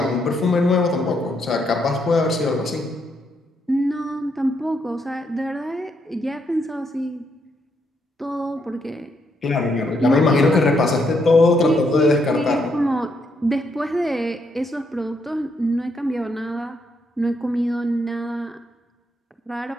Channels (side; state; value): both; normal; correlation 0.76